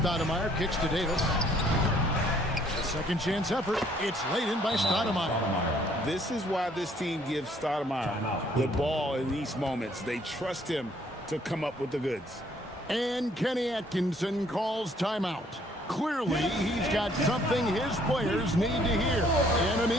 kicks to Davis. A second chance effort. It's laid in by Stoudemire. This is why this team gives Stoudemire the ball in these moments. They trust him to come up with the goods. And Kenny Atkinson calls timeout. Clearly, he's got something his players need to hear. And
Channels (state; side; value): normal; both; correlation 0.63